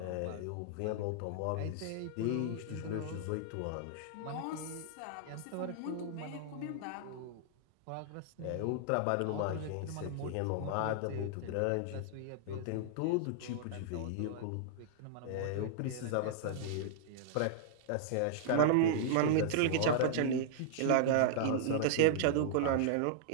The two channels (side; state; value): both; different; correlation -0.01